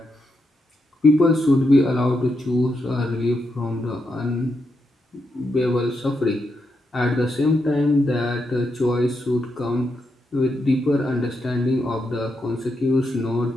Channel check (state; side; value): normal; both; correlation 0.83